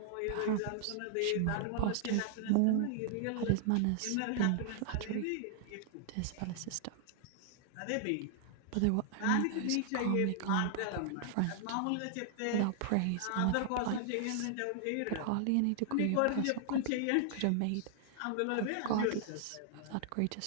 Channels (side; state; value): both; different; correlation -0.01